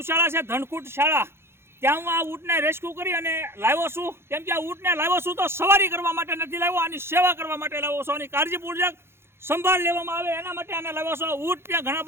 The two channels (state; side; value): late; left; 0.12 ms